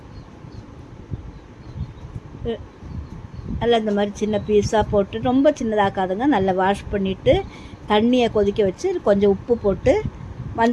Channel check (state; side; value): identical; both; correlation 1.00